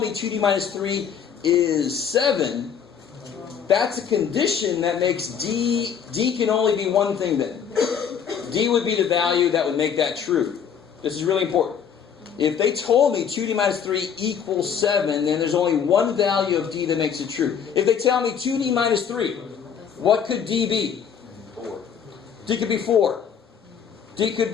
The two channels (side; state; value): right; quieter; 7.6 dB